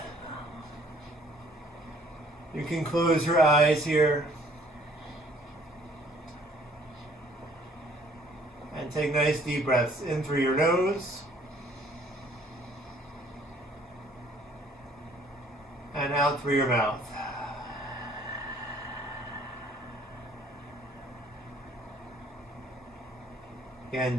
You can close your eyes here. And take nice deep breaths in through your nose. And out through your mouth. Again,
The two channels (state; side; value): normal; both; correlation 0.59